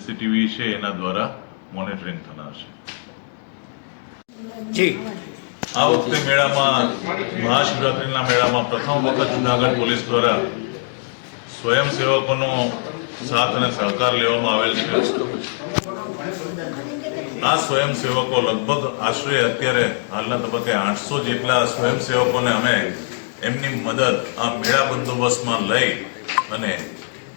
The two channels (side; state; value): right; silent; digital silence